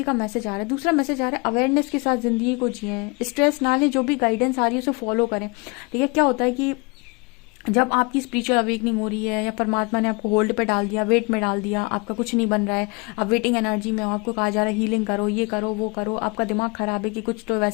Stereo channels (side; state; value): right; quieter; 28.8 dB